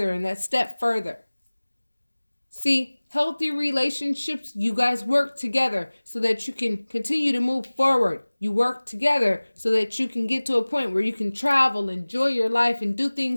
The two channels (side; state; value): both; inverted; correlation -1.00